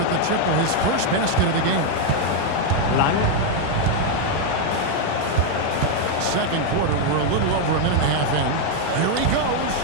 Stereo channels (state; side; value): different; both; correlation 0.01